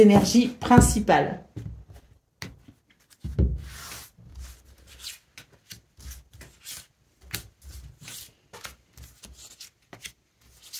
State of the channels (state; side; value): identical; both; correlation 1.00